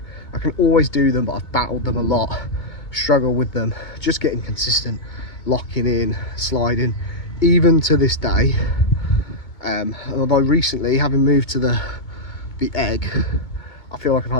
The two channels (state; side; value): late; right; 2.2 ms